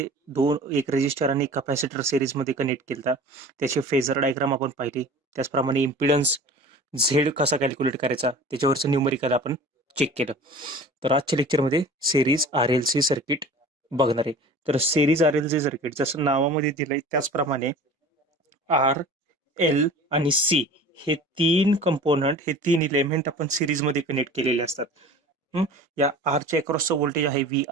एक रेजिस्टर आणि कॅपॅसिटर सेरीजमध्ये कनेक्ट केला. त्याचे फेजर डायग्राम आपण पाहिली. त्याचप्रमाणे इम्पिडन्स झेड कसा कॅल्क्युलेट करायचा त्याच्यावरचं न्यूमरिकल आपण चेक केलं. तर आजच्या लेक्चरमध्ये series R L C circuit बघणार आहे. तर series R L C circuit जसं नावामध्ये दिलंय त्याचप्रमाणे आर एल आणि सी हे तीन कंपोनंट, हे तीन इलेमेंट आपण सिरीजमध्ये कनेक्ट केलेले असतात. या आरच्या अक्रॉसचं व्होल्टेज आहे व्ही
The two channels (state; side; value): normal; both; correlation 0.41